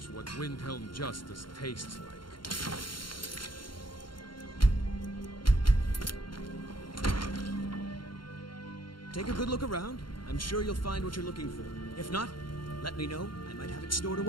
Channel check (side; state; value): right; late; 0.72 ms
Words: what Windhelm justice tastes like. Take a good look around. I'm sure you'll find what you're looking for. If not, let me know. I might have it stored